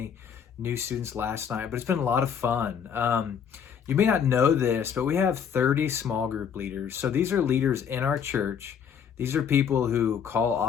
new students last night, but it's been a lot of fun. You may not know this, but we have 30 small group leaders. So these are leaders in our church. These are people who call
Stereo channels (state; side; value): quieter; right; 7.6 dB